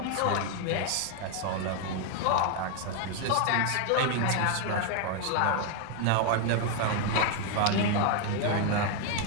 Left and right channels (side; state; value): both; different; correlation 0.00